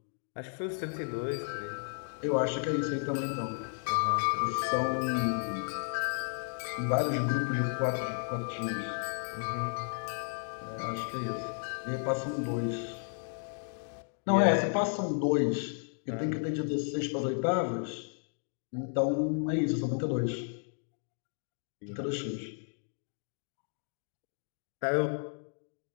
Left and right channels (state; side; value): silent; right; 56 dB below the other